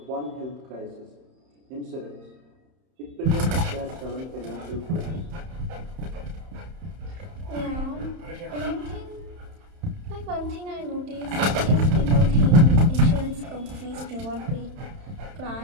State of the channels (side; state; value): left; late; 31 ms